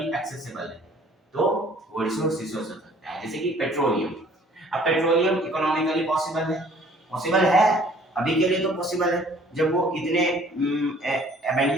एक्सेसिबल है, तो वो रिसोर्स हो सकता है। जैसे कि पेट्रोलियम। अब पेट्रोलियम इकोनॉमिकली पॉसिबल है, अभी के लिए तो पॉसिबल है। जब वो इतने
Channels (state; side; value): normal; both; correlation 0.55